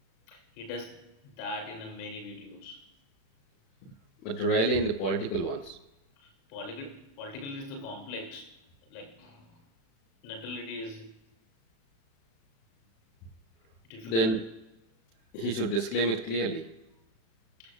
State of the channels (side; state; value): right; late; 36 ms